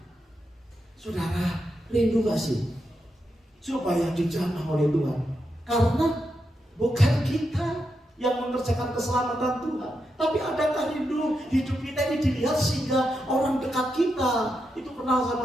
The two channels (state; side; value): normal; both; correlation 0.85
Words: saudara rindu gak sih supaya dijamah oleh Tuhan? Karena bukan kita yang mengerjakan keselamatan Tuhan, tapi adakah rindu hidup kita ini dilihat sehingga orang dekat kita itu kenal